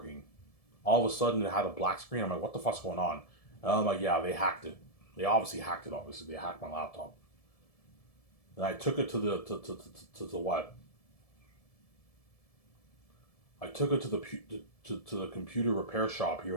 All of a sudden, it had a black screen. I'm like, what the fuck's going on? And I'm like, yeah, they hacked it. They obviously hacked it, obviously. They hacked my laptop. And I took it to the what? I took it to the computer repair shop here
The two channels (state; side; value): late; right; 1.7 ms